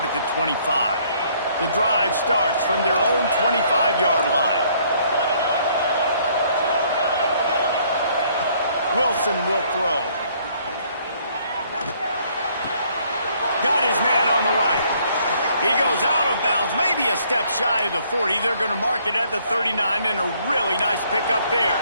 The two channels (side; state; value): both; inverted; correlation -0.64